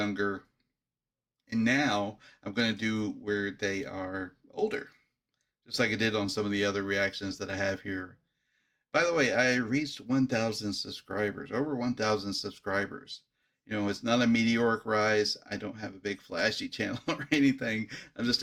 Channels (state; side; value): identical; both; correlation 1.00